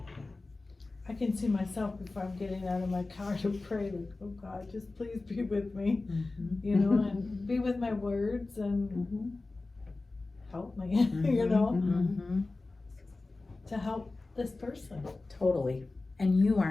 I can see myself before I'm getting out of my car to pray, like, oh God, just please be with me, you know, and be with my words and help me, you know, to help this person. Totally. And you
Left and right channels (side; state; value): right; quieter; 3.4 dB